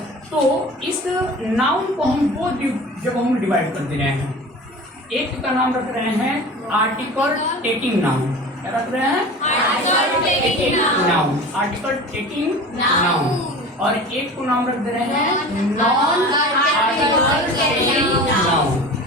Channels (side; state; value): both; normal; correlation 0.36